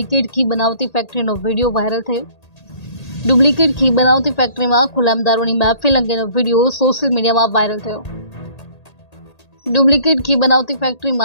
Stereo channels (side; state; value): right; late; 1.8 ms